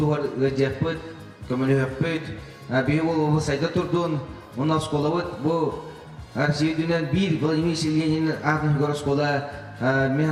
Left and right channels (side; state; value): both; identical; correlation 1.00